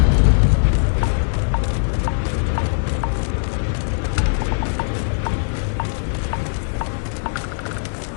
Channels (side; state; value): right; silent; digital silence